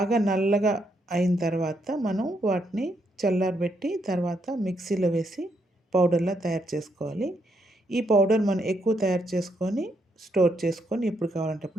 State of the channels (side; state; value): both; normal; correlation 0.77